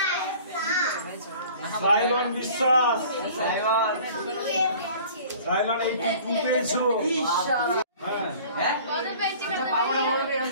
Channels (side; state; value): both; inverted; correlation -0.47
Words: সাইলন বিশ্বাস, সাইলন 82 পেয়েছো। হ্যাঁ,